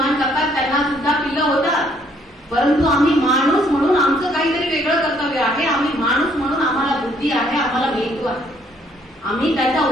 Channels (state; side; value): normal; both; correlation 0.66